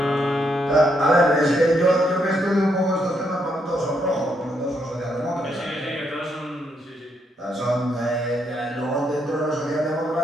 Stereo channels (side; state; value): both; normal; correlation 0.76